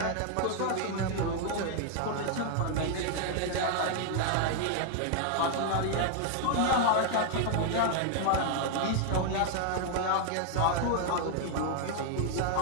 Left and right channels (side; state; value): both; different; correlation 0.00